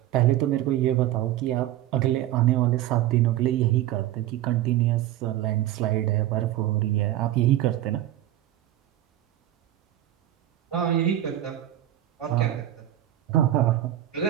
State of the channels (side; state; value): left; quieter; 13.3 dB